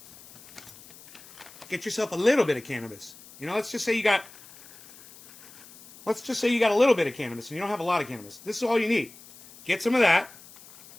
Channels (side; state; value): left; noise; hiss, 21 dB below the sound